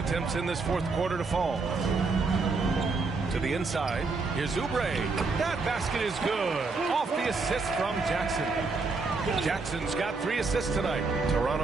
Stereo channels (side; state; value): left; quieter; 4.0 dB